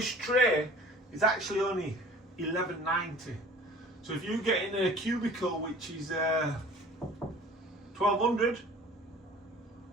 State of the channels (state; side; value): normal; both; correlation 0.47